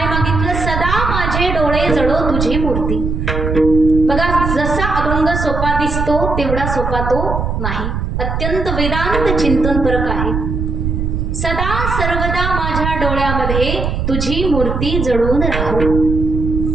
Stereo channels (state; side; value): noise; right; rumble, 2 dB below the sound